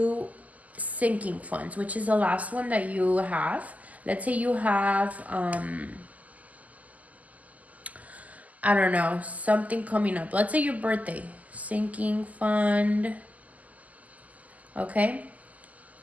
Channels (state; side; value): late; left; 0.076 ms